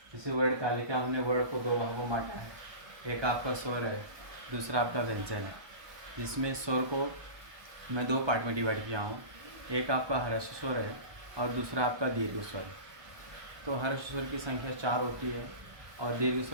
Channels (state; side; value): late; left; 1.2 ms